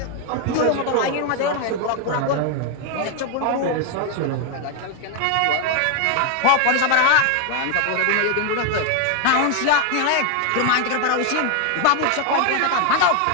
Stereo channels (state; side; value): different; both; correlation 0.01